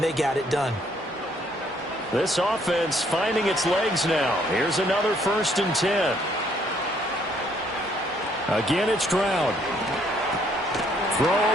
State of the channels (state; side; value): normal; both; correlation 0.66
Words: they got it done. This offense finding its legs now. Here's another 1st and 10. Again, it's Stroud. Throw